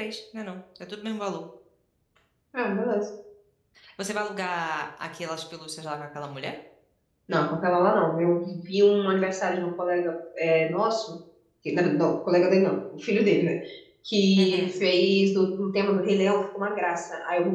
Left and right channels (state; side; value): identical; both; correlation 1.00